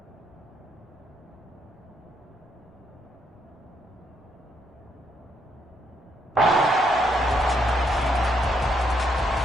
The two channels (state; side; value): normal; both; correlation 0.75